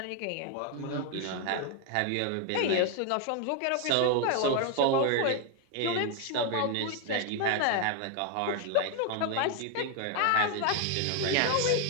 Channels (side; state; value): both; different; correlation 0.01